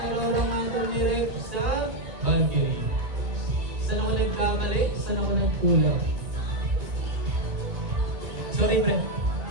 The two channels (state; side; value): late; left; 1.8 ms